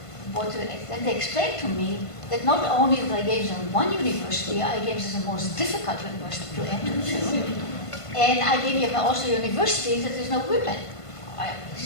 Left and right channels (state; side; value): late; right; 1.5 ms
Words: and they explained to me that not only did I gave them 1 university, I gave them the most difficult university to enter to, and I gave them also universities that there's no women